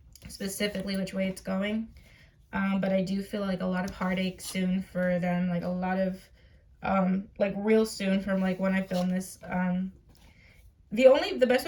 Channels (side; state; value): both; identical; correlation 1.00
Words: specifically which way it's going, but I do feel like a lot of heartache soon for them, like a lot of like real soon from like when I film this. The best